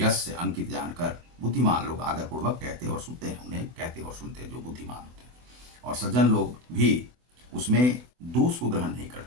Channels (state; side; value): late; left; 24 ms